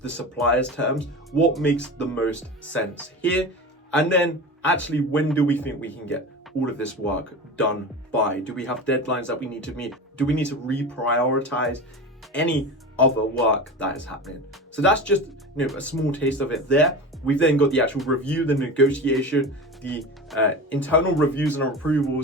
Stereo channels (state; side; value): normal; both; correlation 0.29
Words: the supplier's terms? What makes the most sense here? And then actually, when do we think we can get all of this work done by? Do we have deadlines that we need to meet? Do we need to reprioritize any other work that is happening? So that's just a small taste of it there. We've then got the actual review, the negotiation, the internal reviews and